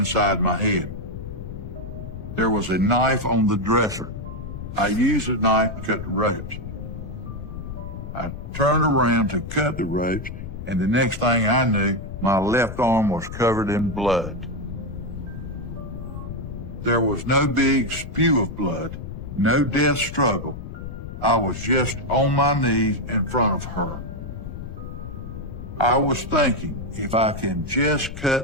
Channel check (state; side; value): noise; left; rumble, 9 dB below the sound